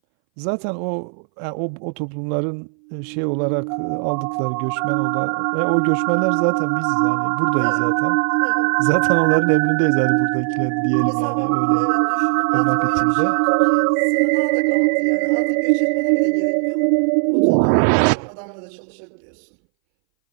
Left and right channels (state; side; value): silent; left; 62 dB below the other